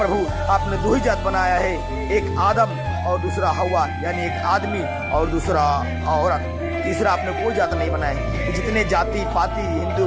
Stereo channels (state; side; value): identical; both; correlation 1.00